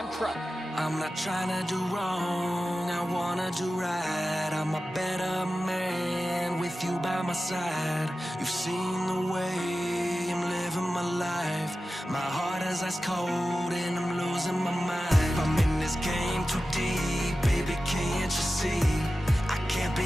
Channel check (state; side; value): normal; both; correlation 0.94